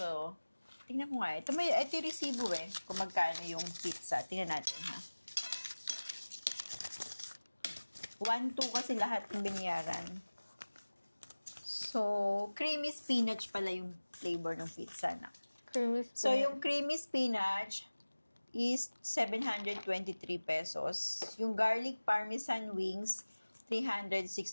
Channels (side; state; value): both; inverted; correlation -1.00